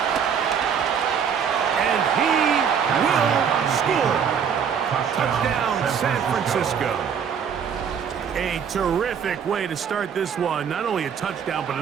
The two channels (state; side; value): quieter; left; 7.4 dB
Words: And he will score. San Francisco. A terrific way to start this one. Not only a touchdown, but